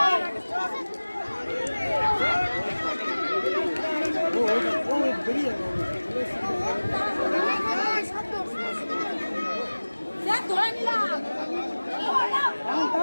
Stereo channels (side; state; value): both; inverted; correlation -1.00